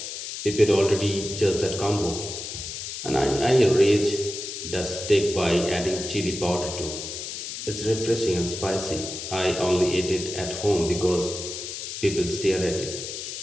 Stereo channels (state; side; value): noise; left; hiss, 7 dB below the sound